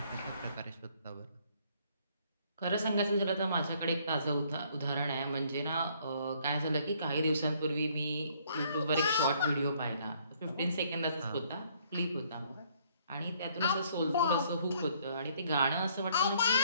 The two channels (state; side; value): inverted; both; correlation -0.64